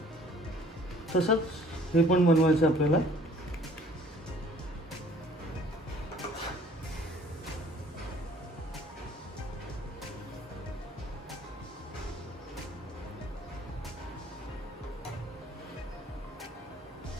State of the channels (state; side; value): normal; both; correlation 0.55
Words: तसंच हे पण बनवायचं आपल्याला.